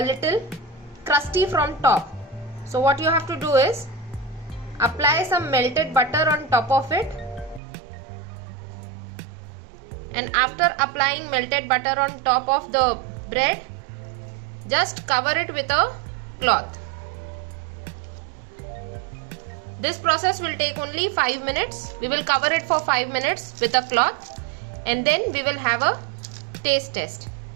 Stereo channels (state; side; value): drops out; left; at 7.6 s